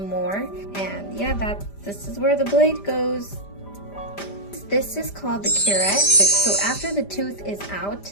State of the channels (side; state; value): right; late; 5.0 ms